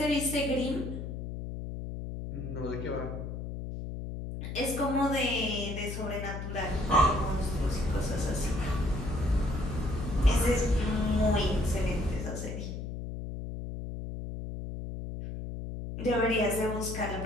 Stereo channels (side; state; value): left; noise; hum, 6 dB below the sound